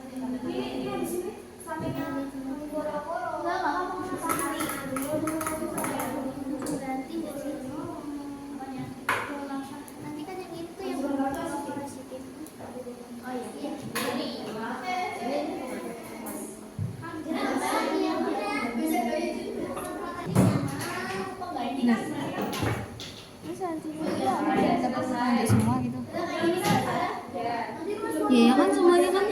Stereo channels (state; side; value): identical; both; correlation 1.00